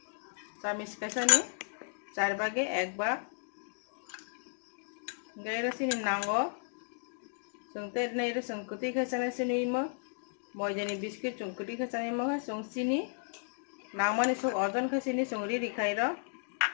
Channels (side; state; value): right; silent; digital silence